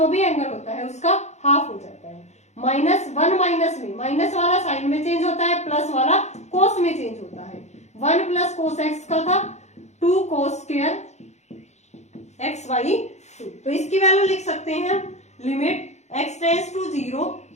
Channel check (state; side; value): late; right; 0.33 ms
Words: भी एंगल होता है उसका हाफ हो जाता है, माइनस 1 माइनस में माइनस वाला साइन में चेंज होता है, प्लस वाला कोस में चेंज होता है, 1 प्लस कोस x का था 2 कोस स्क्वायर x बाई 2, तो इसकी वैल्यू लिख सकते हैं हम limit x tends to 0